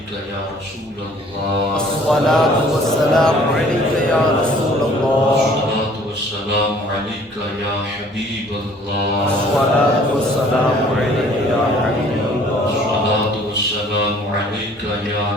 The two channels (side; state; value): both; normal; correlation 0.55